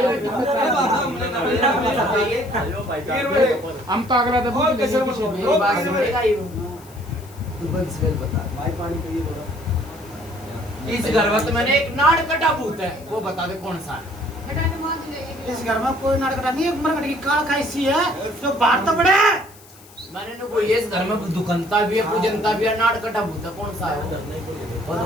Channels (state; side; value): noise; left; hiss, 23 dB below the sound